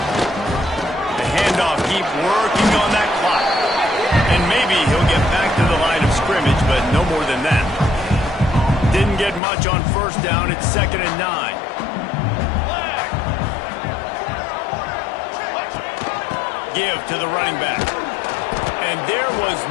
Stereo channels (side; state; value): right; drops out; at 9.4 s